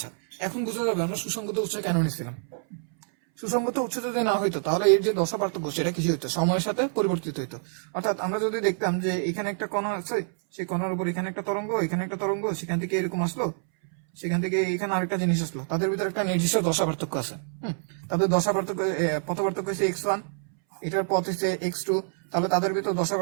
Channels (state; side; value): silent; left; 60 dB below the other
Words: এখন বোঝা যাবে আমরা সুসংগত উৎস কেন নিচ্ছিলাম। সুসংগত উৎস যদি না হইতো তাহলে এর যে দশা পার্থক্য সেটা কিছু হইতো, সময়ের সাথে পরিবর্তিত হইতো। অর্থাৎ আমরা যদি দেখতাম যে এখানে একটা কণা আছে, সেই কণার উপর এখানে একটা তরঙ্গ, এখানে একটা তরঙ্গ, সেখান থেকে এরকম আসলো, সেখান থেকে এখানে আরেকটা জিনিস আসলো, তাদের ভিতরে একটা নির্দিষ্ট দশা পার্থক্য আছে। তাদের দশা পার্থক্য, পথ পার্থক্য হচ্ছে x1, এটার পথ হচ্ছে x2, তাহলে তাদের ভিতর দশা